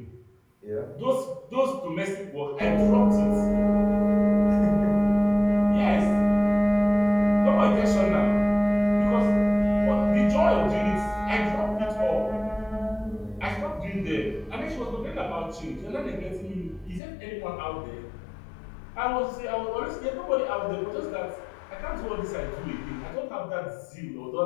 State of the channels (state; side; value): drops out; right; at 17.0 s